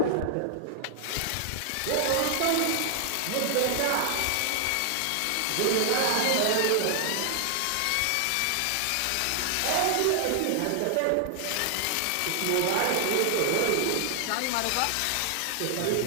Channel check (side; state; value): both; different; correlation 0.00